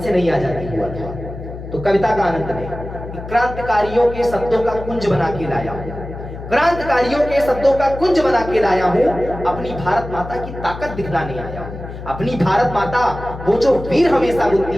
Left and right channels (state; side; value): noise; left; hum, 11 dB below the sound